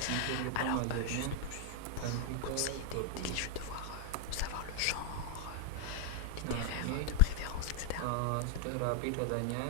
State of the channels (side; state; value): both; different; correlation 0.00